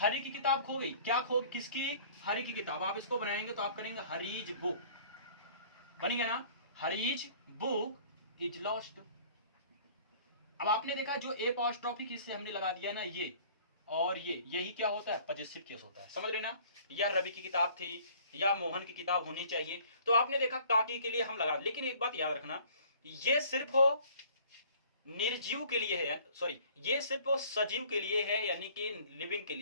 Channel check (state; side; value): inverted; both; correlation -0.52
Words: की किताब खो गई, क्या खो, किसकी, हरि की किताब। आप इसको बनाएंगे तो आप करेंगे हरीज बुक, बन गया ना, हरीज बुक इज लॉस्ट। अब आपने देखा जो ए अपॉस्ट्रोफी किससे हमने लगा दिया ना, ये और ये, यही क्या होता है, पजेसिव केस होता है, समझ रहे ना? या रवि की किताब थी या मोहन की किताब होनी चाहिए, तो आपने देखा ताकि के लिए हम लगा, लेकिन एक बात याद रखना, ये सिर्फ हो निर्जीव के लिए है, सॉरी, ये सिर्फ सजीव के लिए है, यानी कि लिविंग के